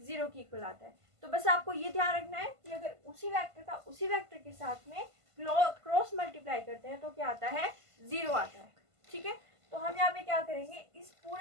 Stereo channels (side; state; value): left; late; 1.5 ms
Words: के इक्वल आता है। तो बस आपको ये ध्यान रखना है कि अगर उसी वेक्टर का उसी वेक्टर के साथ में क्रॉस मल्टीप्लाई करते हैं तो क्या आता है, जीरो आता है, ठीक है। तो हम यहाँ पे क्या करेंगे, इस